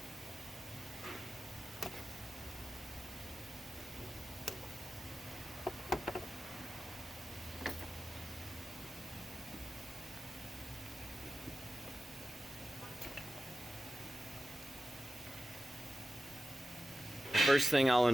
The first thing I'll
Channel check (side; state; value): both; normal; correlation 0.94